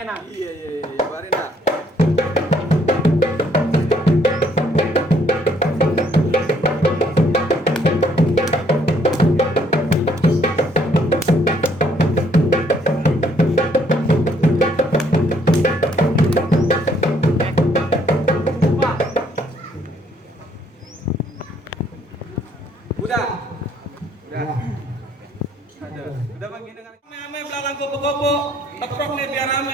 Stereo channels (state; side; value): normal; both; correlation 0.67